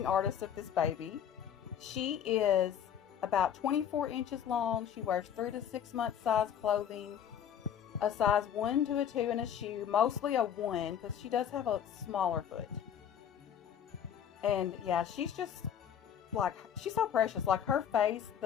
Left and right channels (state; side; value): quieter; right; 9.0 dB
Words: artist of this baby. She is about 24 inches long. She wears 3 to 6 month size clothing, a size 1 to a 2 in a shoe, mostly a 1 because she does have a smaller foot. And yeah, she's just like, she's so precious. Like her face,